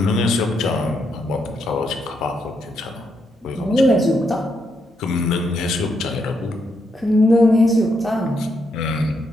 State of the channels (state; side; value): normal; both; correlation 0.79